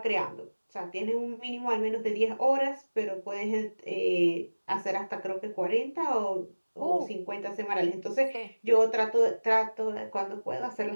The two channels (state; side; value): inverted; both; correlation -1.00